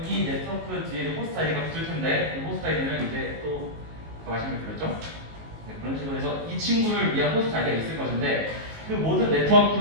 이 네트워크 뒤에는 호스트 아이디가 붙을 텐데 이 호스트 아이디는 이제 또 아까 말씀드렸죠? 네, 그런 식으로 해서 이 친구를 위한 호스트 아이디가 있을 것인데 그 모든 네트워크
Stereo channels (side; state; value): left; late; 19 ms